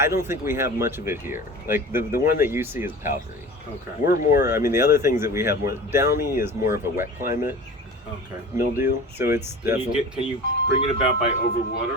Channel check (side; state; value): both; normal; correlation 0.37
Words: don't think we have much of it here. Like the one that you see is powdery. Okay. We're more. I mean, the other things that we have more. Downy is more of a wet climate Okay. mildew, so it's Can definitely. you bring it about by